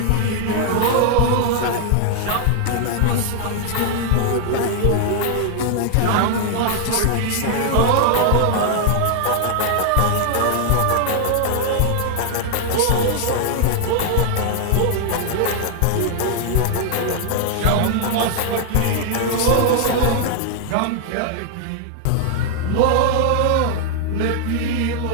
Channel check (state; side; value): different; both; correlation 0.00